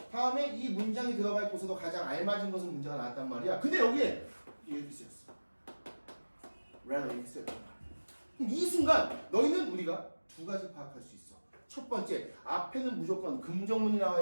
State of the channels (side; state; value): both; inverted; correlation -1.00